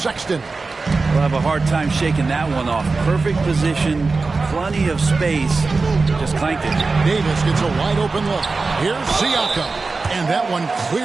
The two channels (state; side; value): quieter; left; 3.9 dB